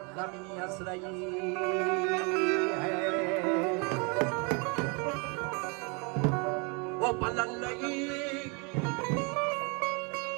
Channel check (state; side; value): quieter; left; 32.5 dB